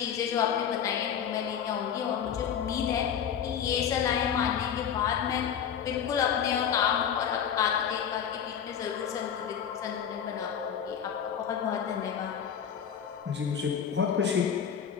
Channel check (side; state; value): right; quieter; 8.3 dB